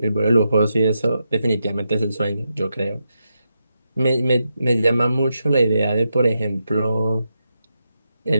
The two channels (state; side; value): inverted; both; correlation -0.86